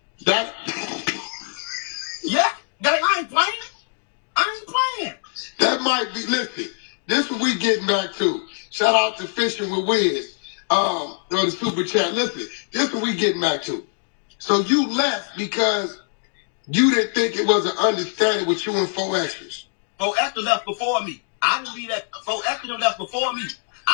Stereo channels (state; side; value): silent; right; digital silence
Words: That. Yeah. I ain't playing. That might be. Listen, this what we getting back to. Shout out to Fishing with Wiz. On the super chat. Listen, this what we getting back to. So you left because you didn't think it was an understanding with you and 4 Extras. 4 Extra left before me. I didn't leave that. 4 Extra left before me.